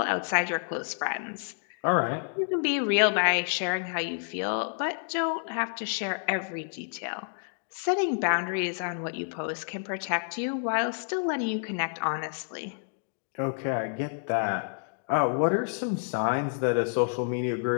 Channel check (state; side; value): silent; right; digital silence